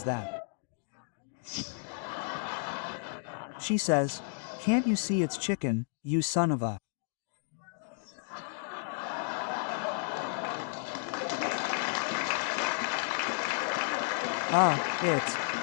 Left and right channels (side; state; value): right; silent; digital silence